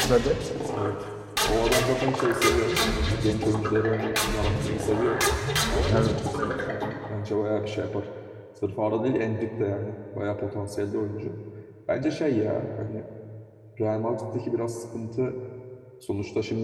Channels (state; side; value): identical; both; correlation 1.00